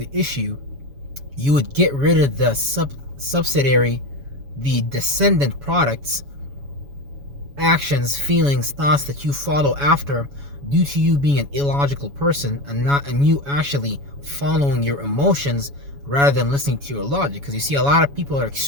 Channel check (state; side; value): late; left; 7.1 ms